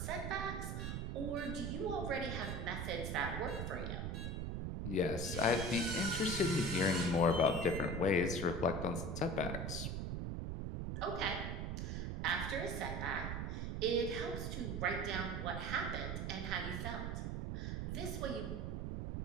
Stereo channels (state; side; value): noise; right; rumble, 2 dB below the sound